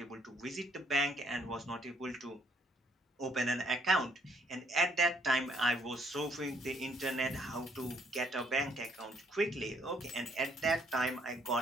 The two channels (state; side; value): normal; both; correlation 0.67